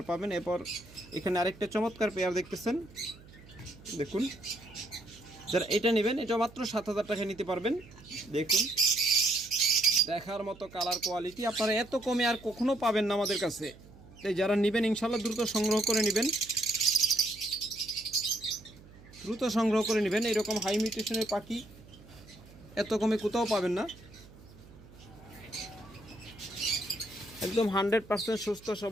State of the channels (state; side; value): noise; right; hum, 21 dB below the sound